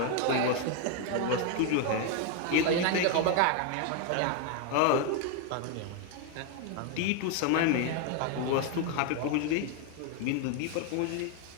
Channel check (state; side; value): different; both; correlation 0.01